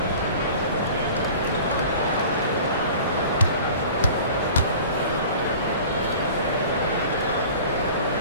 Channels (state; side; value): inverted; both; correlation -0.43